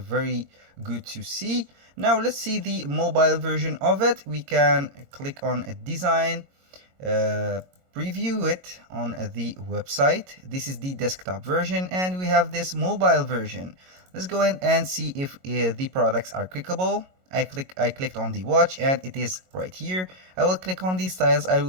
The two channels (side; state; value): left; late; 22 ms